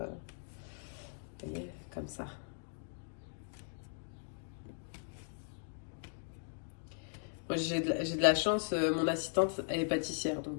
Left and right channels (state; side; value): silent; right; digital silence